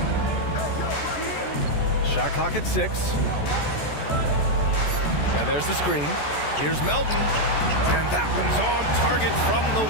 Shot clock at 6. And there's the screen. Here's Melton. And that one's on target from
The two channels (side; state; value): right; late; 14 ms